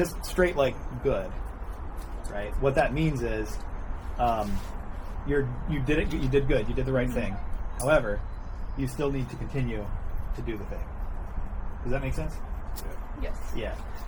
straight like good, right? What that means is, you did it. You did good. You did the right thing. However, you still need to continue to do the thing. Does that make sense? Yes. Yeah.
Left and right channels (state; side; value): identical; both; correlation 1.00